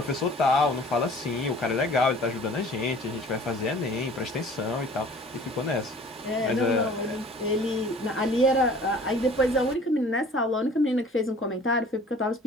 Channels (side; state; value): both; normal; correlation 0.49